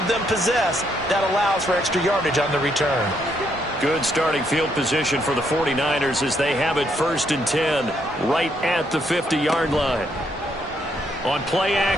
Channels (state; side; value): normal; both; correlation 0.74